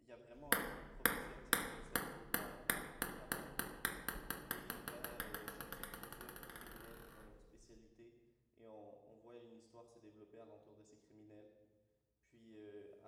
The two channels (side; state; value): both; identical; correlation 1.00